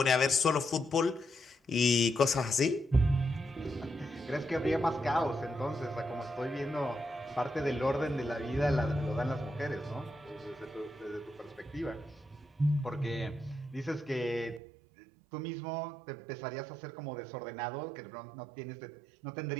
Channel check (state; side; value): drops out; left; at 14.6 s